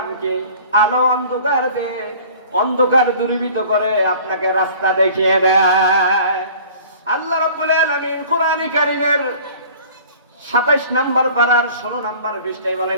কি? আলো অন্ধকার দেয়, অন্ধকার দূরীভূত করে আপনাকে রাস্তা দেখিয়ে দেয়। আল্লাহ রাব্বুল আলামিন কোরআনে কারীমের 27 নম্বর পারার 16 নম্বর পৃষ্ঠায়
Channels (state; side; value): inverted; both; correlation -0.47